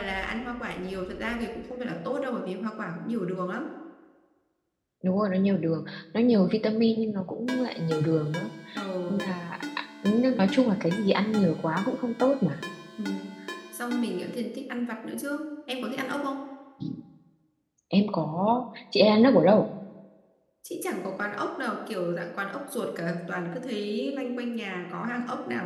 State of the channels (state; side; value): identical; both; correlation 1.00